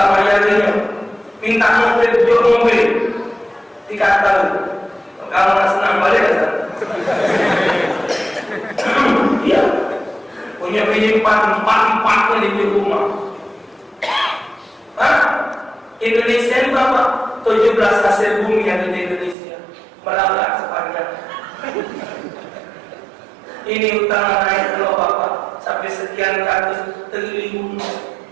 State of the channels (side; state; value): left; drops out; at 19.4 s